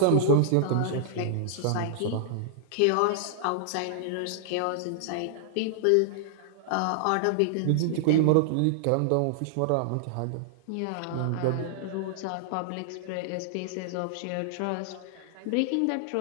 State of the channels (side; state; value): both; different; correlation -0.01